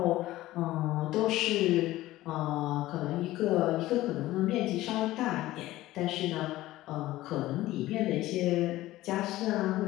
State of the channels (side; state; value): right; quieter; 16.4 dB